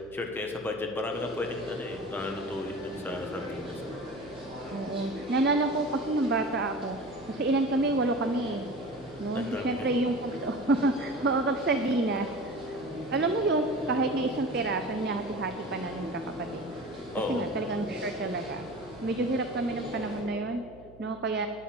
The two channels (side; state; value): right; noise; hum, 22 dB below the sound